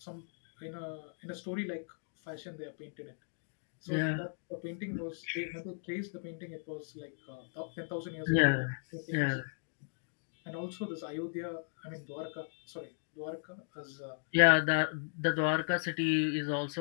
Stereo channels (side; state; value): right; silent; digital silence